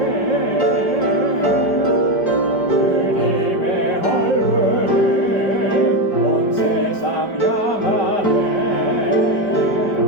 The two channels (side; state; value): right; late; 5.0 ms